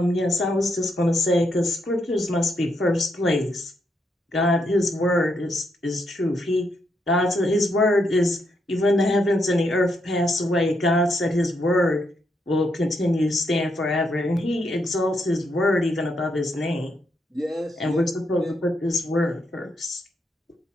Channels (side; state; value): both; normal; correlation 0.79